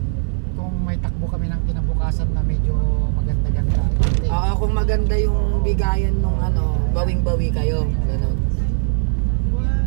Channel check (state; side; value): silent; left; digital silence